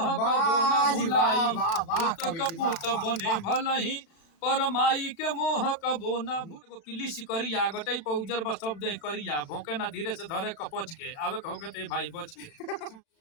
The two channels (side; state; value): right; late; 37 ms